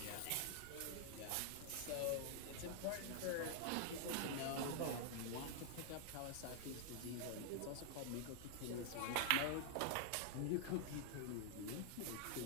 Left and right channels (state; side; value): different; both; correlation 0.00